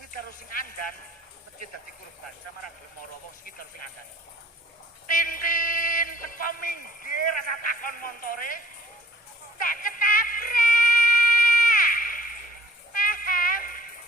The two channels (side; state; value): both; normal; correlation 0.52